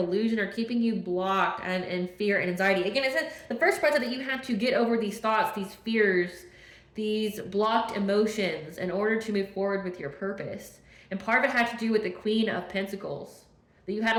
or keeping you blocked and in fear and anxiety. Again, it said the first part that you had to get over these thoughts, these fears, these blocked emotions in order to move forward with your purpose. And part of it had to do with the Queen of Pentacles. That you had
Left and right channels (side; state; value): both; identical; correlation 1.00